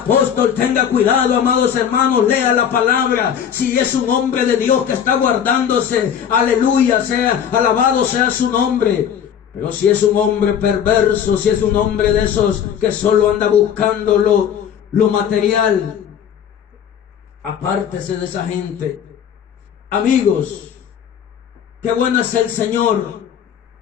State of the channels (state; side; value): quieter; right; 8.6 dB